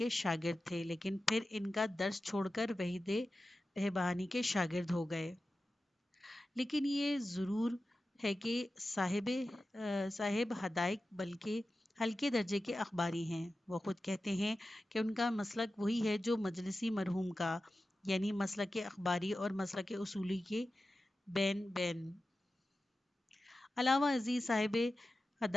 شاگرد تھے، لیکن پھر ان کا درس چھوڑ کر وحید بہبانی کے شاگرد ہو گئے۔ لیکن یہ ضرور ہے کہ صاحب حدائق بلکہ ہلکے درجے کے اخباری ہیں۔ وہ خود کہتے ہیں کہ ان کا مسلک وہی ہے جو مجلسی مرحوم کا، یعنی مسلک اخباری اور مسلک اصولی کے بین بین۔ علاوہ ازیں صاحب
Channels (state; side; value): normal; both; correlation 0.94